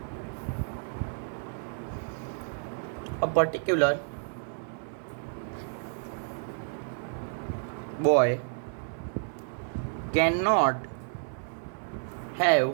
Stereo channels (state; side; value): silent; left; 57 dB below the other